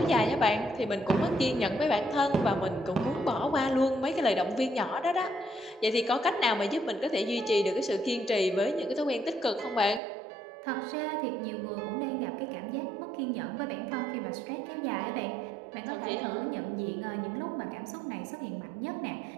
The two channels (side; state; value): left; drops out; at 10.0 s